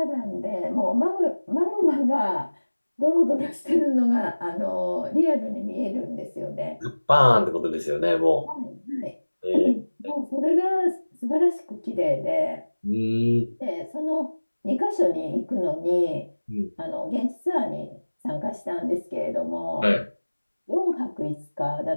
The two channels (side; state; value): both; inverted; correlation -1.00